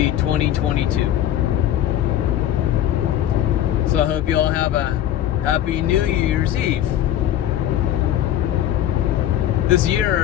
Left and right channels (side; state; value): right; quieter; 11.7 dB